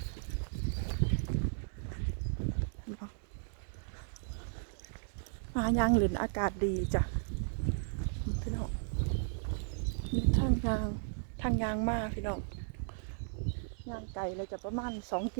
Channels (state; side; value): silent; left; digital silence